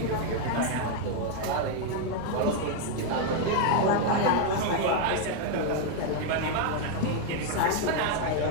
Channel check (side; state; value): both; different; correlation 0.00